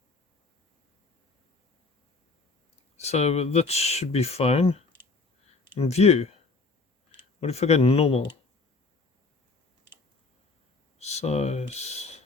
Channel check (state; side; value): quieter; right; 3.8 dB